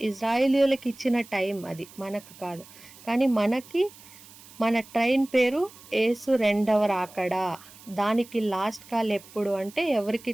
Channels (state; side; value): noise; right; hiss, 21 dB below the sound